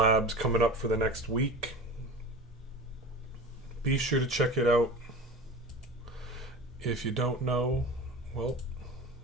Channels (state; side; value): normal; both; correlation 0.33